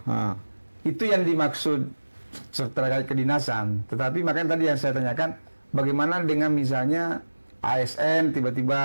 Itu yang dimaksud terkait kedinasan. Tetapi makanya tadi yang saya tanyakan, bagaimana dengan misalnya ASN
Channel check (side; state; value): both; inverted; correlation -1.00